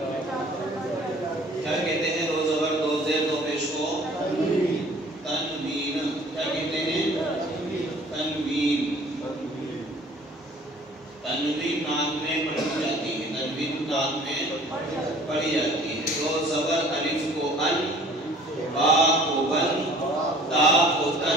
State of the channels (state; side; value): normal; both; correlation 0.51